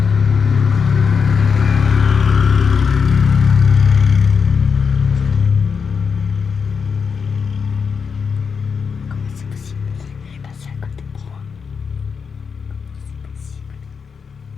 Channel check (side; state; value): right; quieter; 5.9 dB